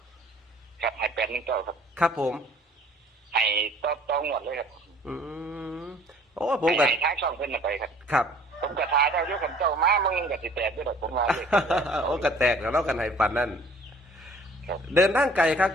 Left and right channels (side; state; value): both; normal; correlation 0.53